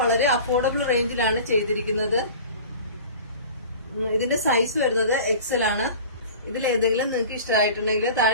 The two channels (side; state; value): both; inverted; correlation -0.40